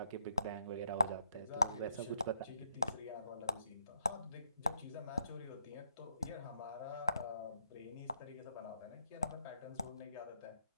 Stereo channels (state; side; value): inverted; both; correlation -0.74